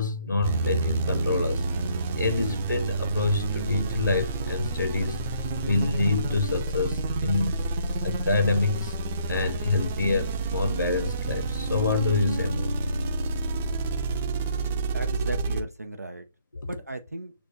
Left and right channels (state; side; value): inverted; both; correlation -0.66